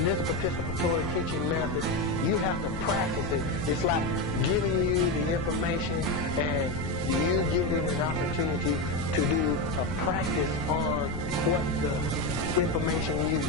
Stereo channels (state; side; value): noise; left; rumble, 7 dB below the sound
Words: this participatory teaching method, you have to practice it. It's like giving you the information and you getting an opportunity to do a practice on what the information you